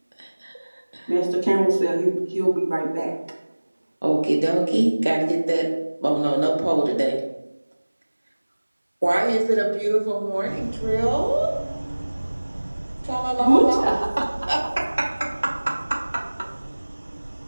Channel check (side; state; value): both; inverted; correlation -1.00